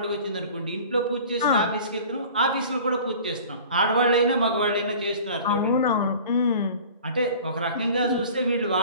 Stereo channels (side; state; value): both; inverted; correlation -0.43